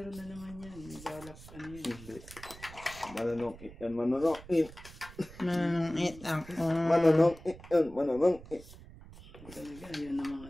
na naman yan. Balak ka niya. Hindi. Mananongit yan, mananongit. Manangit ako. Mananongit yan, mananongit. Talaga, yan naman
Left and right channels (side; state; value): right; noise; rumble, 17 dB below the sound